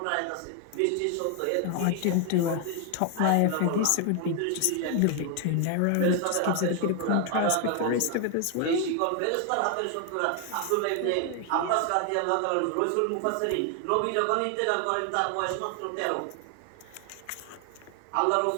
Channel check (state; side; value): different; both; correlation 0.00